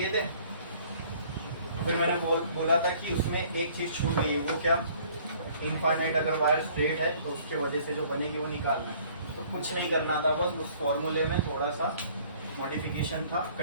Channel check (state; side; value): inverted; both; correlation -0.56